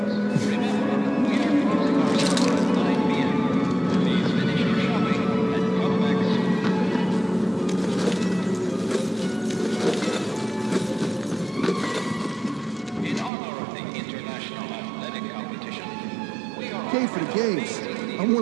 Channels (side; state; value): left; drops out; at 13.3 s